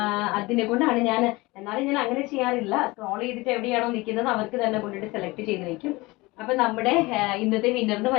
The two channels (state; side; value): quieter; right; 22.3 dB